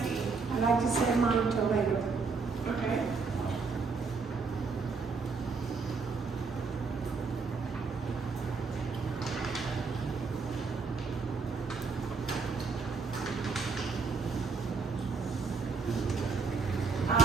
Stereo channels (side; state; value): left; quieter; 4.6 dB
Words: I'd like to say mine until later. Okay. I